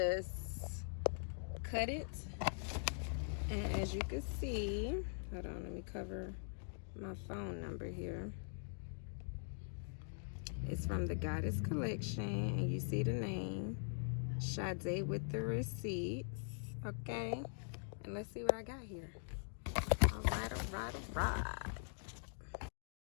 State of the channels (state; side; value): silent; right; digital silence